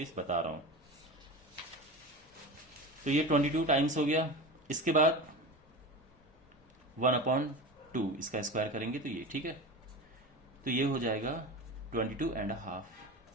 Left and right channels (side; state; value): both; normal; correlation 0.28